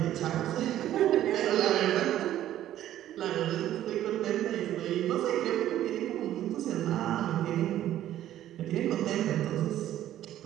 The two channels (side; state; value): left; quieter; 12.5 dB